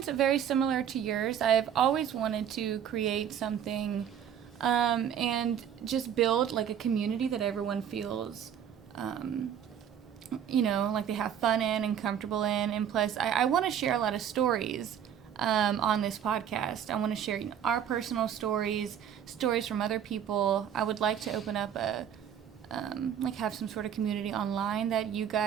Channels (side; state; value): left; quieter; 9.1 dB